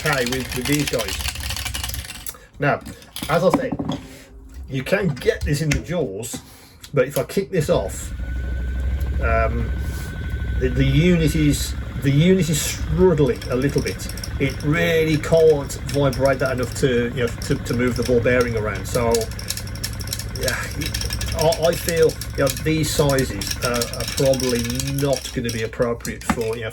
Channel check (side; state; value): both; identical; correlation 1.00